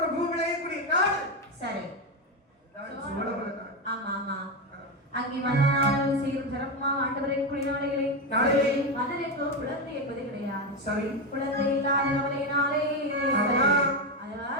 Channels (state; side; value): normal; both; correlation 0.11